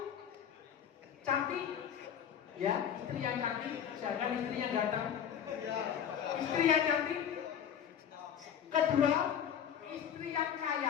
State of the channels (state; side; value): quieter; right; 8.8 dB